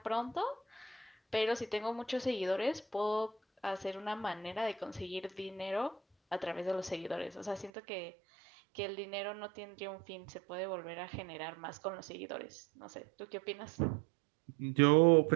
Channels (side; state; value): left; drops out; at 7.7 s